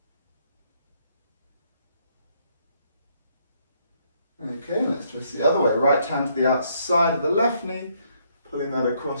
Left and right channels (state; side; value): inverted; both; correlation -0.71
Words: Okay, let's twist the other way. Right hand to the outside of the left knee, pulling that